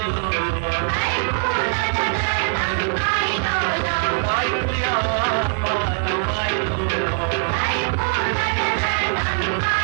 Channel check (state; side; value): silent; left; 65 dB below the other